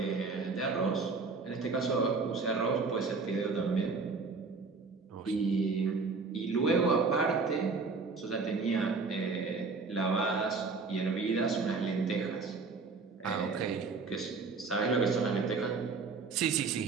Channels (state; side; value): quieter; left; 4.4 dB